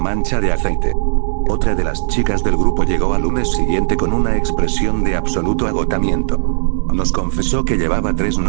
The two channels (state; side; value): silent; left; digital silence